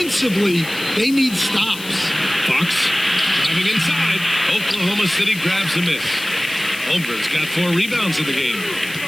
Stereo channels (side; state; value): left; noise; hiss, 14 dB below the sound